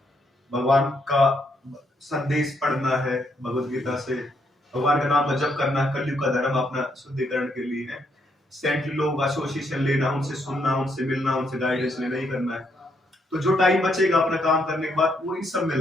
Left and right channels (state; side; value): normal; both; correlation 0.75